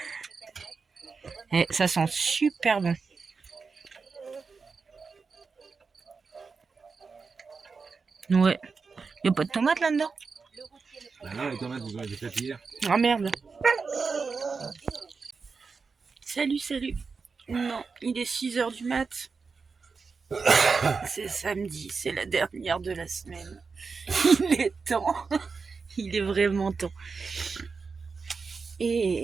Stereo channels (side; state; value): left; quieter; 4.9 dB